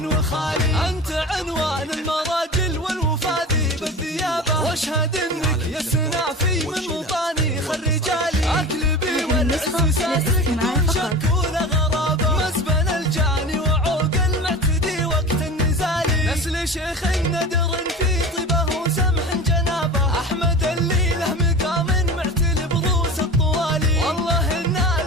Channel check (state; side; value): normal; both; correlation 0.33